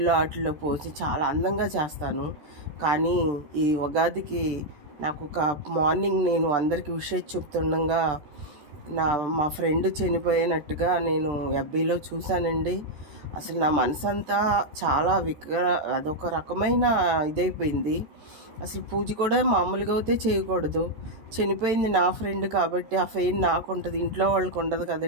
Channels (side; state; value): left; late; 14 ms